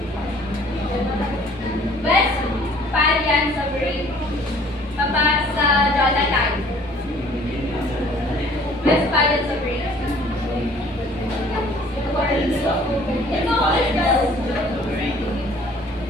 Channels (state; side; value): normal; both; correlation 0.54